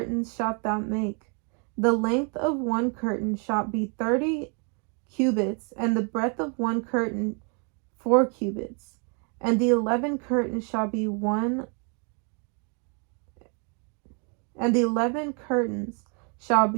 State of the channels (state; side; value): quieter; left; 37.1 dB